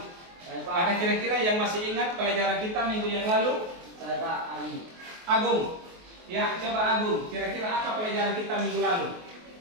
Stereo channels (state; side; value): late; left; 23 ms